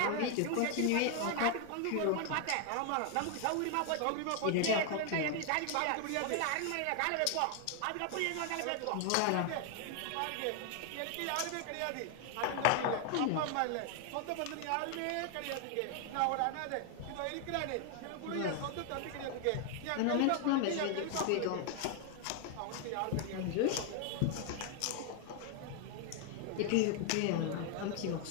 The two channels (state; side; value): different; both; correlation 0.00